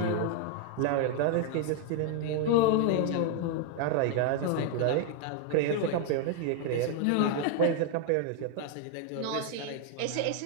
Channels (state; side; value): different; both; correlation 0.01